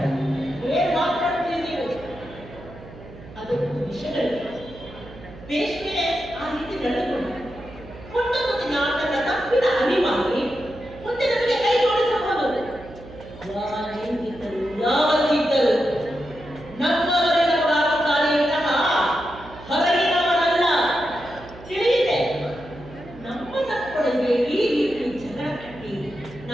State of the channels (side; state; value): right; noise; hum, 17 dB below the sound